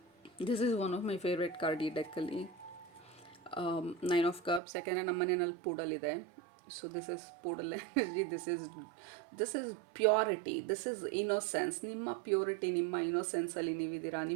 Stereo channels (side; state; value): left; drops out; at 4.6 s